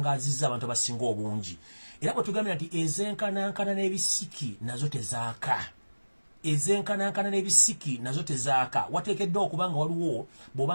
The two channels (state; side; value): inverted; both; correlation -1.00